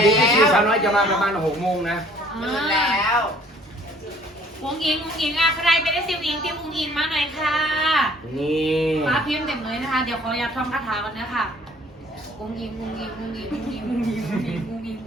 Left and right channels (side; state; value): both; normal; correlation 0.57